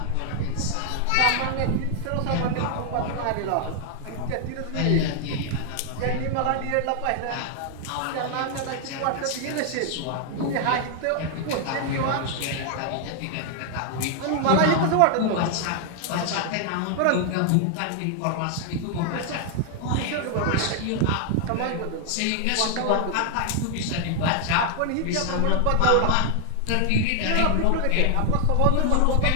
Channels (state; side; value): different; both; correlation 0.00